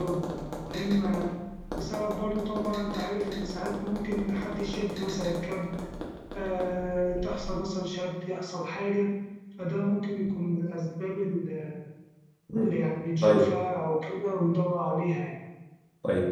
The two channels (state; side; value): identical; both; correlation 1.00